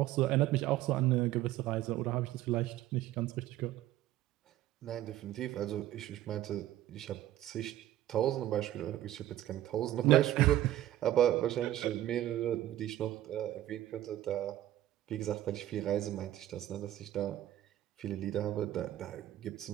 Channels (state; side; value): quieter; left; 13.6 dB